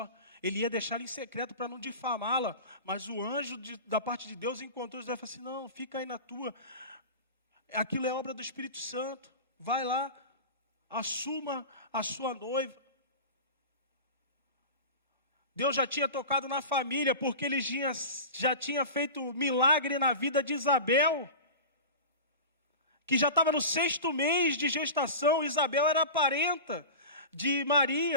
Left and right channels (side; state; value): both; inverted; correlation -0.30